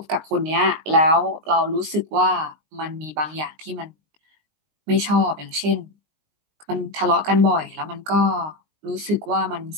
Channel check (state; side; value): late; left; 19 ms